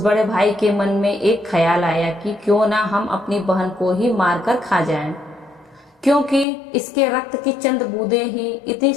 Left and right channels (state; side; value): drops out; right; at 6.5 s